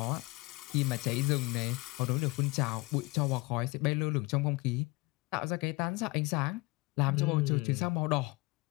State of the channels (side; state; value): right; quieter; 24.4 dB